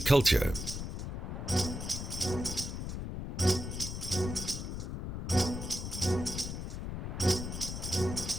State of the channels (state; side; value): noise; left; rumble, 5 dB below the sound